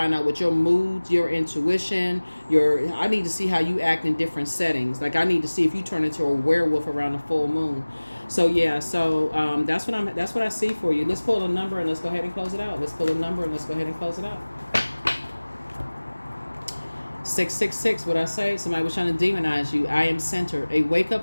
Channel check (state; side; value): inverted; both; correlation -1.00